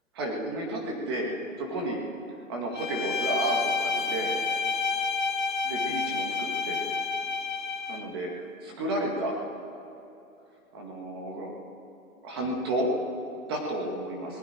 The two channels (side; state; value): both; normal; correlation 0.32